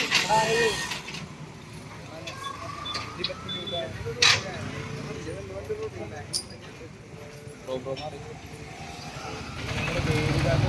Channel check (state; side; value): identical; both; correlation 1.00